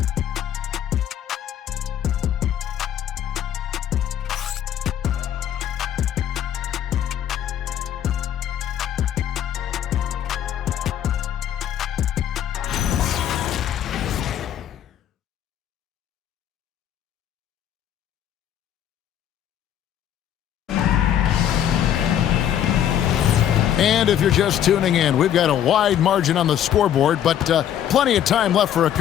And if you're just tuning in, we've got a wide margin on the scoreboard, but plenty of time left for a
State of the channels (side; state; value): right; quieter; 10.3 dB